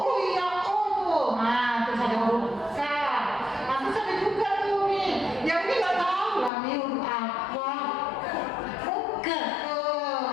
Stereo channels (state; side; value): drops out; right; at 6.5 s